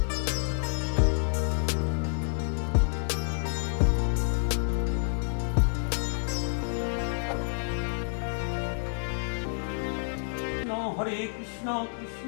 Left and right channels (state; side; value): silent; right; digital silence